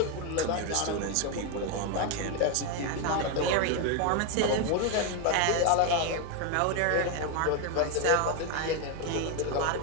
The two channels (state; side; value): different; both; correlation 0.01